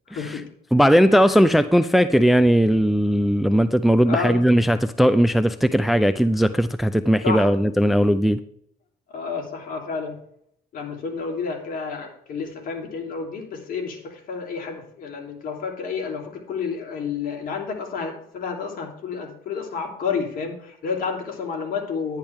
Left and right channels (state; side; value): normal; both; correlation 0.88